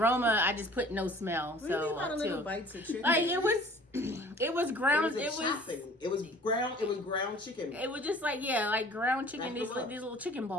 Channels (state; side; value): normal; both; correlation 0.49